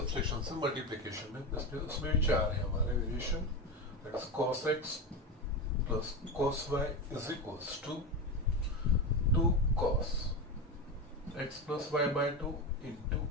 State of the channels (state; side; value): normal; both; correlation 0.19